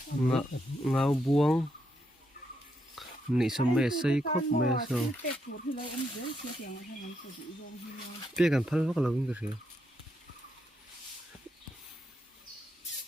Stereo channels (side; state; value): both; normal; correlation 0.79